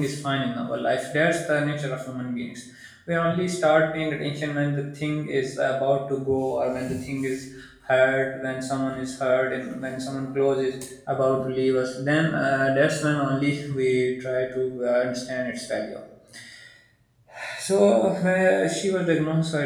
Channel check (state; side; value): identical; both; correlation 1.00